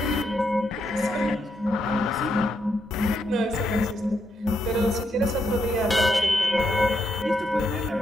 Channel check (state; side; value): normal; both; correlation 0.79